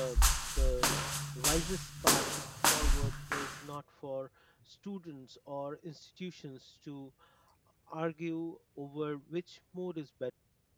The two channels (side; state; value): both; identical; correlation 1.00